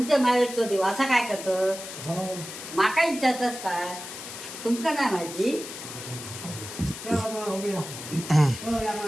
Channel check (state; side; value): noise; left; hiss, 10 dB below the sound